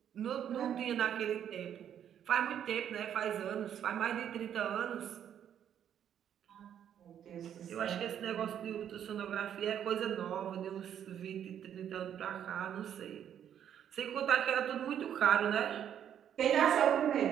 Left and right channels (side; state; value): left; quieter; 9.5 dB